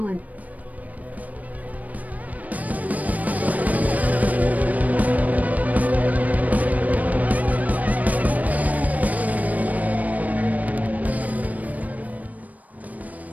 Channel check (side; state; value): left; late; 0.073 ms